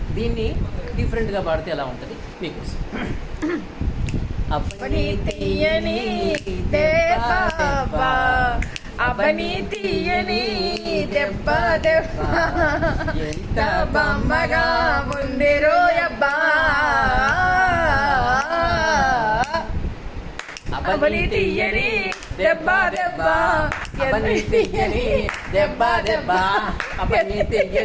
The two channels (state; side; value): identical; both; correlation 1.00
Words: దీన్ని డిఫరెంట్ గా పాడితే ఎలా ఉంటుంది మీకోసం. అబ్బని తీయని దెబ్బ అబ్బని తీయని దెబ్బ దెబ్బ ఎంత బొమ్మగా ఉంది రోయబ్బా, అబ్బని తీయని దెబ్బ దెబ్బ అబ్బని తీయని దెబ్బ దెబ్బ అబ్బని